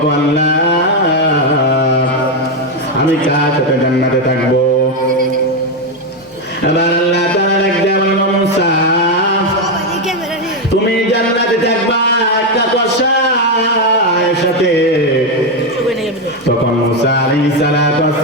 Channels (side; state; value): both; normal; correlation 0.06